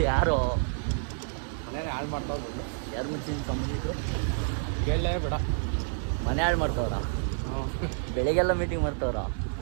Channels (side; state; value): left; silent; 59 dB below the other